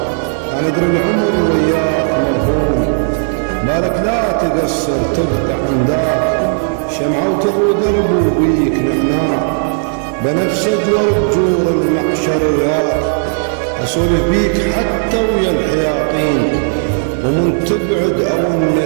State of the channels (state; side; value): silent; left; digital silence